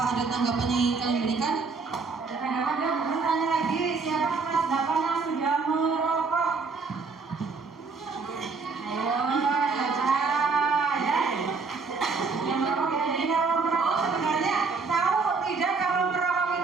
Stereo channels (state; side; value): quieter; left; 4.6 dB